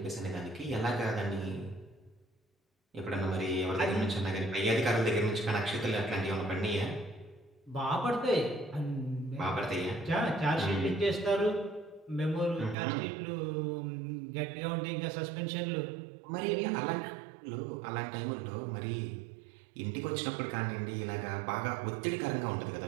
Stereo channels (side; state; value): left; drops out; at 12.8 s